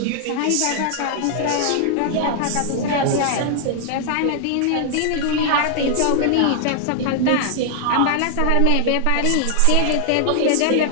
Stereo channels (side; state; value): both; different; correlation 0.00